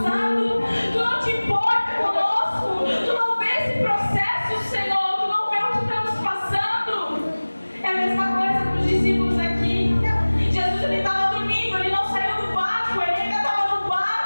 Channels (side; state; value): both; inverted; correlation -1.00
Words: tu não te importa conosco, tu não vê esse processo, Senhor, tu não vê o que estamos passando. É a mesma coisa com os discípulos aqui. Jesus, ele estava dormindo, ele não saiu do barco, ele ainda estava no